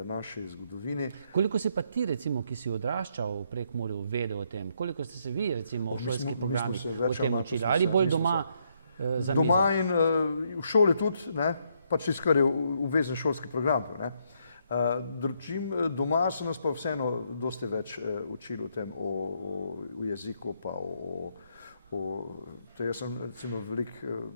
naši zgodovini. Koliko si pa ti, recimo, ki si odraščal v Prekmurju, vedel o tem? Koliko ste se vi, recimo, v šolskih programih o tem učili? Ali bolj doma za mizo? Doma in v šoli tudi, ne, pač tisto, kar je obvezen šolski program, ne. Doma so nas pa vseeno dosti več učili o tem, o jeziku, pa jaz sem recimo veliko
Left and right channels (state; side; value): inverted; both; correlation -0.74